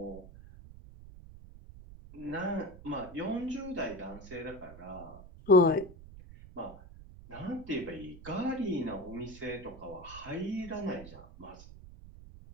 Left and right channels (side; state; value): right; noise; rumble, 16 dB below the sound